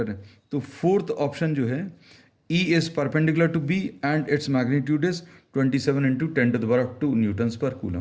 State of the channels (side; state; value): both; identical; correlation 1.00